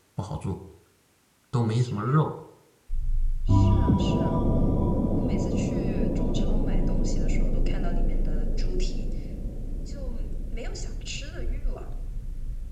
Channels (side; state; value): both; identical; correlation 1.00